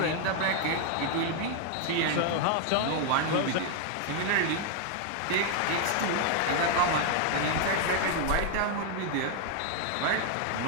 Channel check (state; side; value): different; both; correlation 0.00